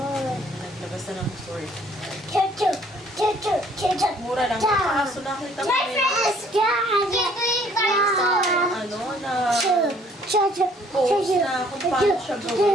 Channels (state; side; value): normal; both; correlation 0.60